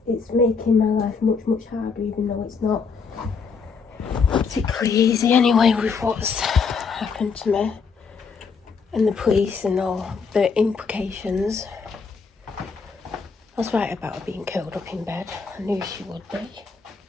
It's making my life much, much harder, even though it's not particularly easy anyway with what's happened to me and the police and all the implications. I was right about her being curled up in bed. I knew she would be.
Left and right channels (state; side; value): quieter; right; 5.3 dB